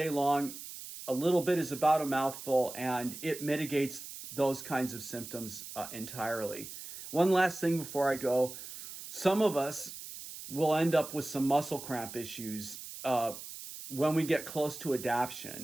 long. A little bit is about a mouthful, and it mitigates those kinds of symptoms entirely. One last thing before I go. Some of us will end up with some muscle cramp issues when we get close to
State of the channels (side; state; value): right; noise; hiss, 11 dB below the sound